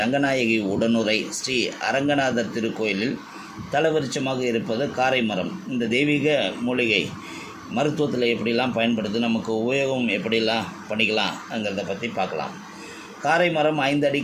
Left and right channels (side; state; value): both; identical; correlation 1.00